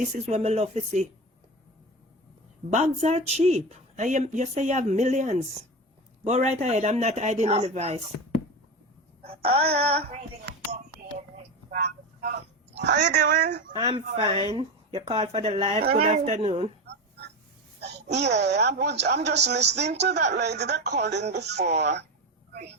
is what I love to see. Bags are cheap. You say you have millions. Go right ahead. I'm not hiding any vice. Yeah. How you doing? I'm fine. You called for the live. Good afternoon. Yeah, I'm just listening to that lady that called in before.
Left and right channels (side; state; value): both; normal; correlation 0.21